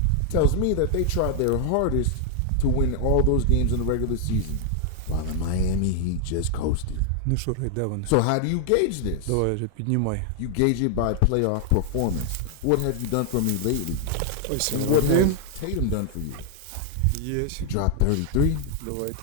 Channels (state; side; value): different; both; correlation 0.00